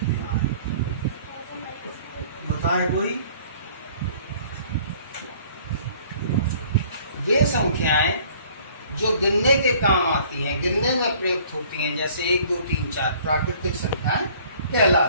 बताए कोई? वे संख्याएं जो गिनने के काम आती हैं, गिनने में प्रयुक्त होती हैं, जैसे 1, 2, 3, 4 प्राकृतिक संख्याएं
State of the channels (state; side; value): inverted; both; correlation -0.54